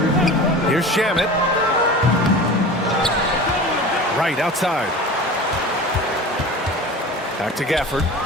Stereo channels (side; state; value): both; normal; correlation 0.36